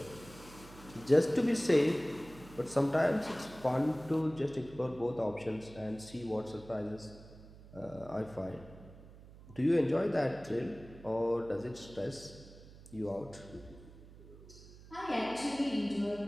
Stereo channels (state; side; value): noise; right; hum, 19 dB below the sound